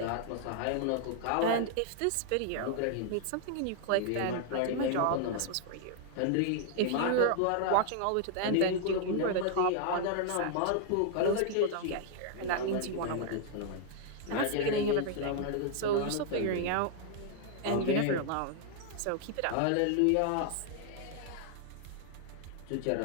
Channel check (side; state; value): both; different; correlation 0.00